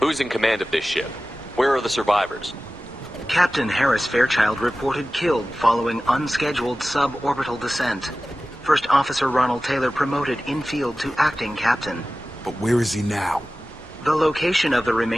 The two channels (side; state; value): both; normal; correlation 0.96